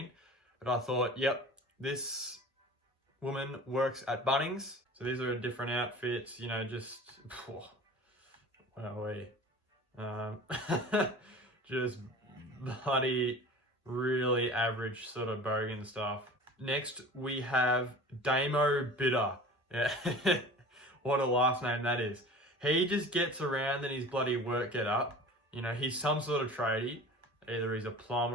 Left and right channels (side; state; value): both; normal; correlation 0.40